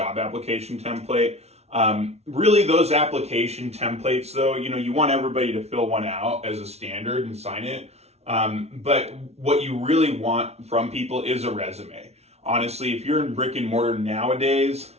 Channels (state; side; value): late; left; 0.31 ms